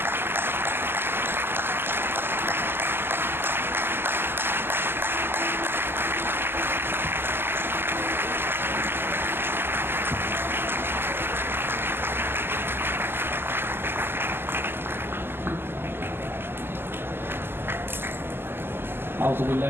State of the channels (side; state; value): left; late; 0.10 ms